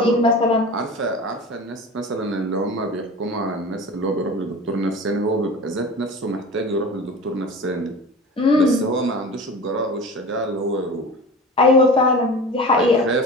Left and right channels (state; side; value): normal; both; correlation 0.35